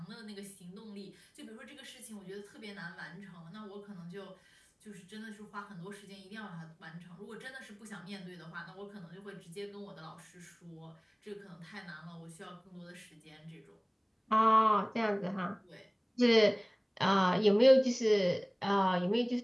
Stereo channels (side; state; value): both; identical; correlation 1.00